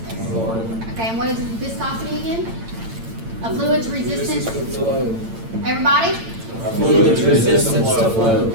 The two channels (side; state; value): left; late; 8.9 ms